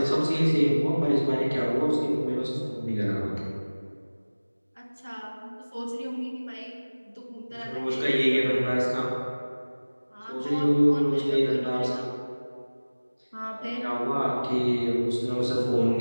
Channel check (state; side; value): inverted; both; correlation -1.00